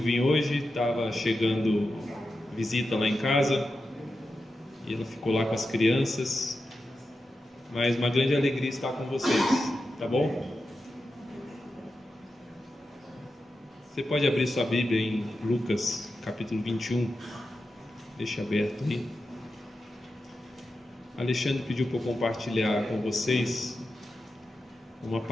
hoje, estava chegando visita lá em casa e ela ficou lá com as crianças. Mas uma grande alegria estar com vocês, tá bom? Você pode abrir sua Bíblia em Lucas, capítulo 21. Deixa aberto aí. Alexandre pediu para eu compartilhar com vocês uma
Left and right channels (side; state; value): both; normal; correlation 0.90